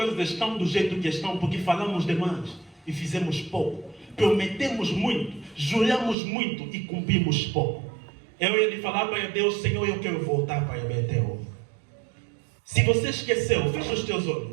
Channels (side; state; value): left; drops out; at 6.2 s